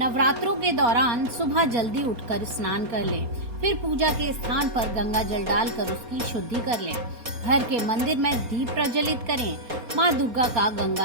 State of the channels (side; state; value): left; late; 4.3 ms